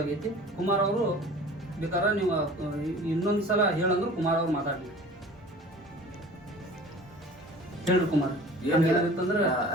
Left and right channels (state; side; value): normal; both; correlation 0.44